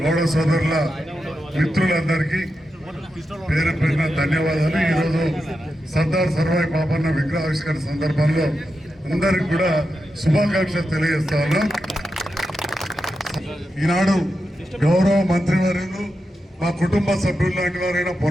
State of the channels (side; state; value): both; normal; correlation 0.88